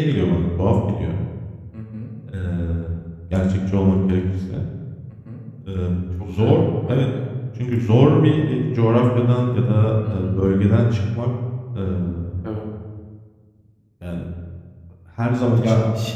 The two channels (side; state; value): both; identical; correlation 1.00